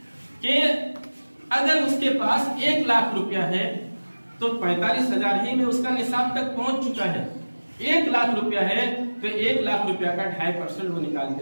کہ اگر اس کے پاس 1 لاکھ روپیہ ہے تو 45,000 ہی میں اس کا نصاب تک پہنچ چکا ہے۔ 1 لاکھ روپیہ ہے تو 1 لاکھ روپیہ کا 2.5% وہ نکال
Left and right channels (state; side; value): inverted; both; correlation -1.00